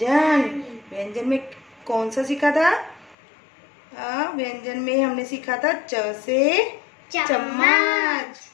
में कौन सा सीखा था? व्यंजन में हमने सीखा था च से चम्मच,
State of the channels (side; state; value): right; drops out; at 3.2 s